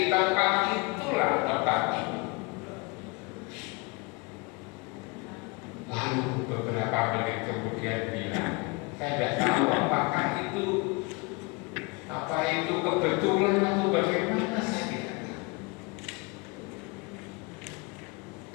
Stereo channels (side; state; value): right; quieter; 28.8 dB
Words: tempat itulah tempat itu. Lalu beberapa menit kemudian bilang, saya tidak tahu apakah itu kebetulan atau bagaimana, saya tidak tahu.